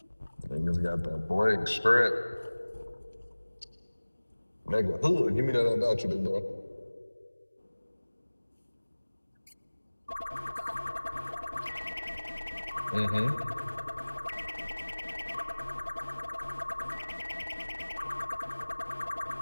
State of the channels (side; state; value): both; inverted; correlation -1.00